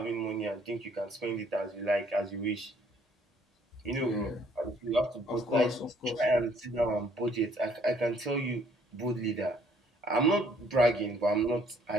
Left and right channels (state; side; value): normal; both; correlation 0.63